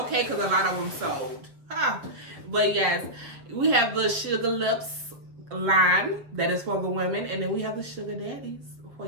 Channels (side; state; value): left; late; 7.5 ms